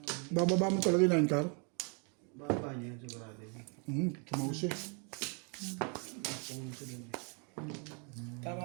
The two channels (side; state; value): left; quieter; 36.5 dB